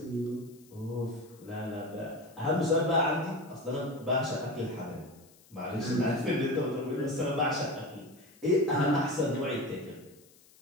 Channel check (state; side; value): noise; left; hiss, 27 dB below the sound